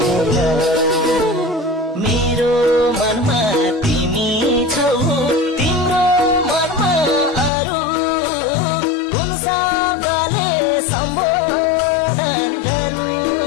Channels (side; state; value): right; drops out; at 7.5 s